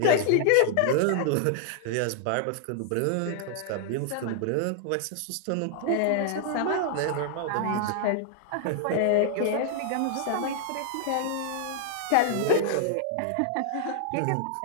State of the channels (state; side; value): different; both; correlation -0.01